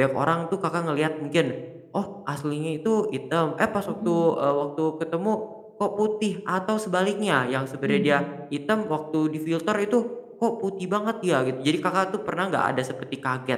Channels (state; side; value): identical; both; correlation 1.00